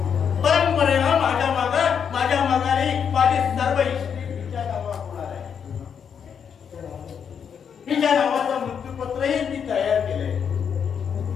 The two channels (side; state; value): right; quieter; 7.4 dB